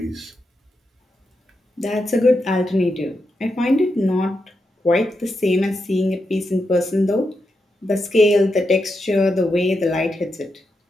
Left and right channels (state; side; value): normal; both; correlation 0.86